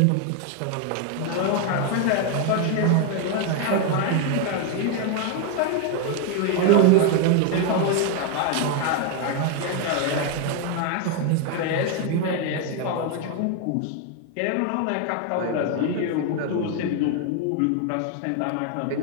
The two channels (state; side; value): different; both; correlation 0.01